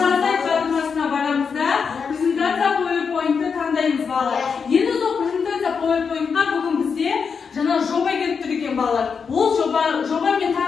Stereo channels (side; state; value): right; quieter; 5.9 dB